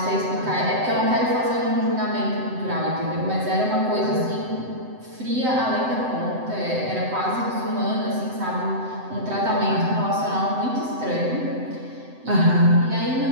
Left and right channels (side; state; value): left; late; 7.8 ms